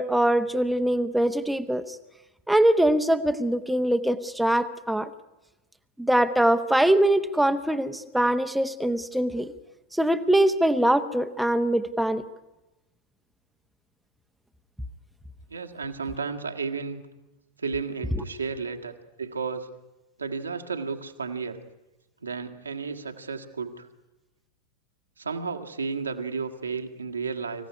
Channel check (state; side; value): normal; both; correlation 0.79